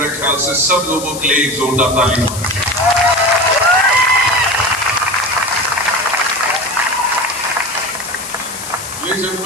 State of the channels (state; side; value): noise; left; hiss, 10 dB below the sound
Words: ख्याल से सब लोगों के लिए एक जोरदार ताली. लेडीज एंड